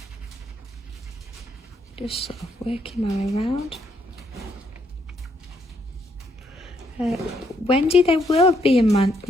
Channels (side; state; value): both; normal; correlation 0.73